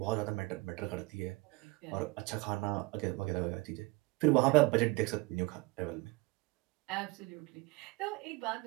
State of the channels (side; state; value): left; quieter; 24.0 dB